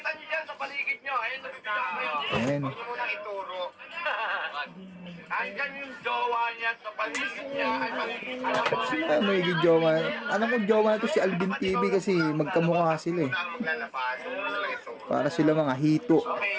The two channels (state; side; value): identical; both; correlation 1.00